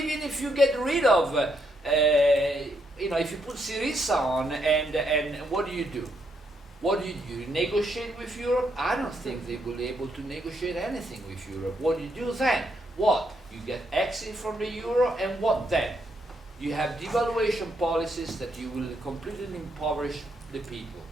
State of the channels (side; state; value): both; normal; correlation 0.76